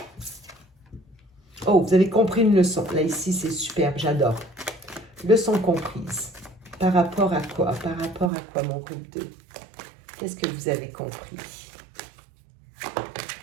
Oh, vous avez compris une leçon. Là, ici, c'est superbe, j'adore. Leçon comprise. Par rapport à quoi? Par rapport à quoi, mon groupe 2? Qu'est-ce que vous avez compris?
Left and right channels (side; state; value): left; drops out; at 8.3 s